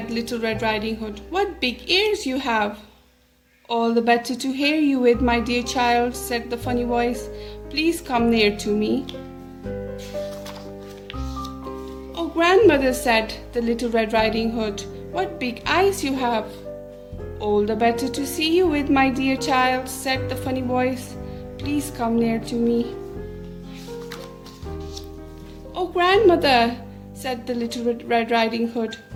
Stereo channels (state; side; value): identical; both; correlation 1.00